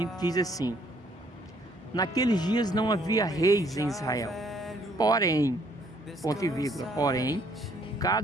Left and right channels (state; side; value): normal; both; correlation 0.66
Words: diz assim: naqueles dias não havia reis em Israel, porém, ponto e vírgula, porém,